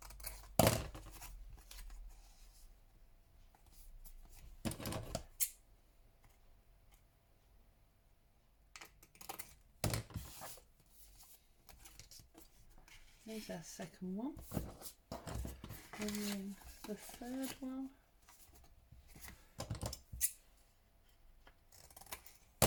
Here's our second one. And then the third one. I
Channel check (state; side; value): identical; both; correlation 1.00